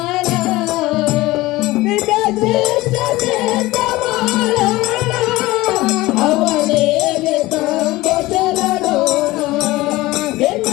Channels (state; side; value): quieter; right; 19.0 dB